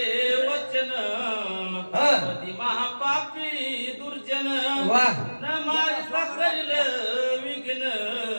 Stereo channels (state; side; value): inverted; both; correlation -1.00